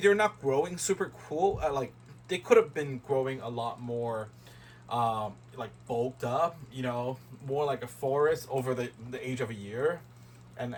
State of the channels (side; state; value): both; identical; correlation 1.00